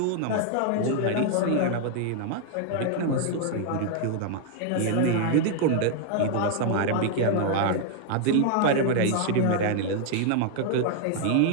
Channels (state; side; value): different; both; correlation 0.00